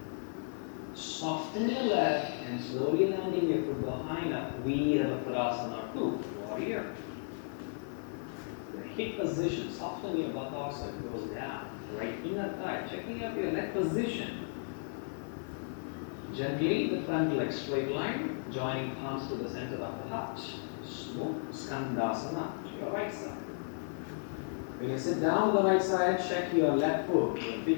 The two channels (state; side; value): silent; right; digital silence